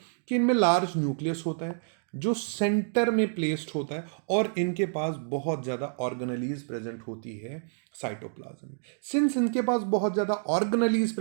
कि इनमें लार्ज न्यूक्लियस होता है जो सेंटर में प्लेस्ड होता है और इनके पास बहुत ज़्यादा ऑर्गेनेलीज प्रेजेंट होती है साइटोप्लाज्म में। सिंस इनके पास बहुत ज़्यादा ऑर्गेनेलीज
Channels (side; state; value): left; silent; digital silence